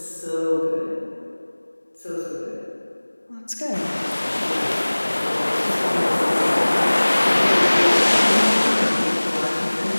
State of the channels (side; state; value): both; inverted; correlation -1.00